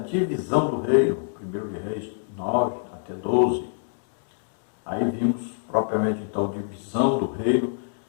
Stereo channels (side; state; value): right; silent; digital silence